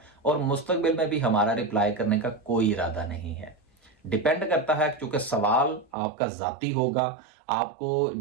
और मुस्तकबिल में भी हमारा रिप्लाई करने का कोई इरादा नहीं है। डिपेंड करता है, क्योंकि सवाल आपका जाती होगा, आपको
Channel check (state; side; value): drops out; left; at 5.9 s